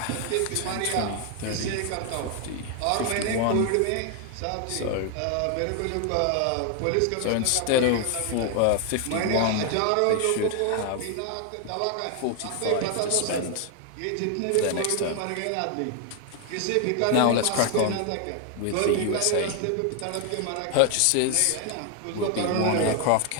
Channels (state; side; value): different; both; correlation 0.00